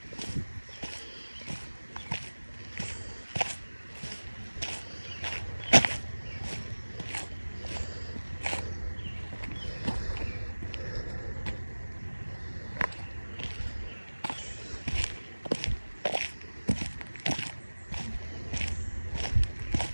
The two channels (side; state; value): both; inverted; correlation -1.00